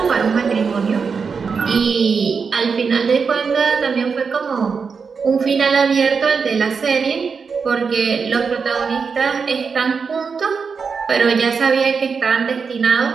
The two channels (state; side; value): quieter; left; 5.5 dB